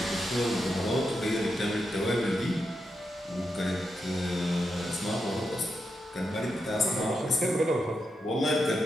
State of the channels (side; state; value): both; normal; correlation 0.85